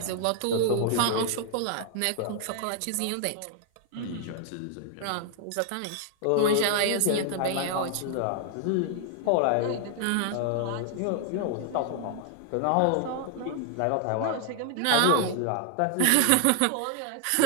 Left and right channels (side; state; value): both; different; correlation 0.00